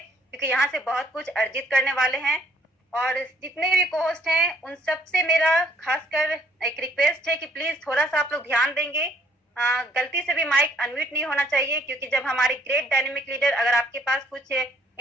यहाँ से बहुत कुछ अर्जित करने वाले हैं। और जितने भी कोहोस्ट हैं उन सबसे मेरा खासकर एक रिक्वेस्ट है कि प्लीज थोड़ा सा आप लोग ध्यान देंगे। गलती से भी माइक अनम्यूट नहीं होना चाहिए, क्योंकि जब हमारे ग्रेट डायनेमिक लीडर अगर आपके पास कुछ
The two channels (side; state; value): both; normal; correlation 0.64